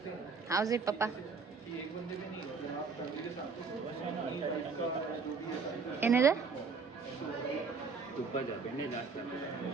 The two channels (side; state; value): left; quieter; 4.9 dB